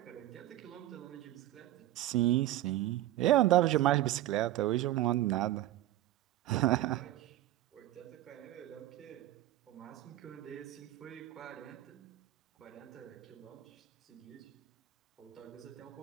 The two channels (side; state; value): left; quieter; 14.5 dB